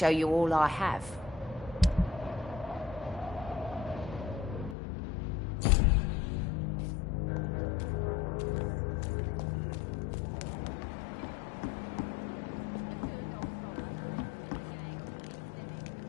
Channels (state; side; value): drops out; right; at 4.8 s